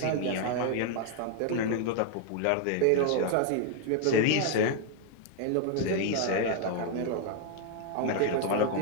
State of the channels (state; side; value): different; both; correlation 0.01